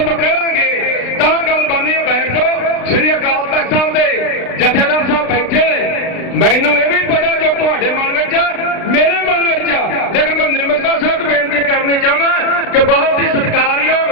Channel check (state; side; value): late; right; 36 ms